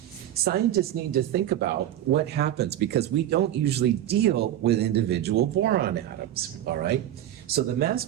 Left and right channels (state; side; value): quieter; left; 12.0 dB